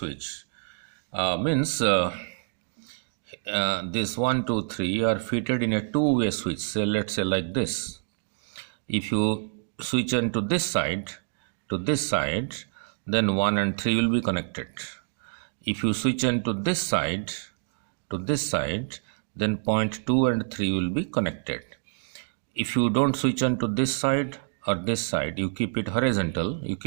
Means this 1, 2, 3 are fitted in a two-way switch. So let's say like this. If you switch on to this side, then 1 and 3 will be connected. If you switch on to this side, then point 2 and 3 will be connected. If you don't switch on to this side or this side, you keep it horizontal, you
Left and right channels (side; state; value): left; silent; digital silence